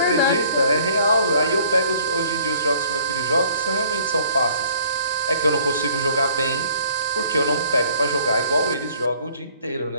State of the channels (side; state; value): both; inverted; correlation -0.58